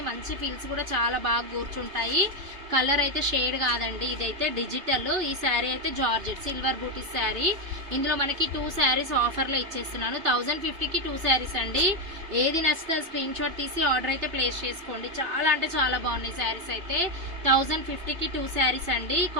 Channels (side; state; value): left; late; 2.9 ms